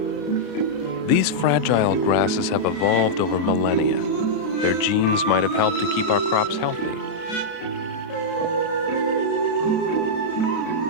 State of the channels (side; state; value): both; normal; correlation -0.07